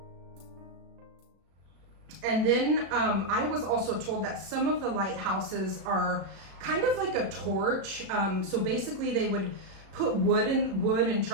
And then I was also told that some of the lighthouses are kind of like a torch. So basically they would put wood and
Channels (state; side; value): late; left; 36 ms